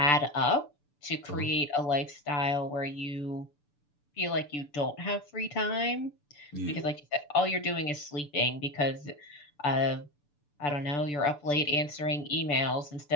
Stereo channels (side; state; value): right; late; 6.9 ms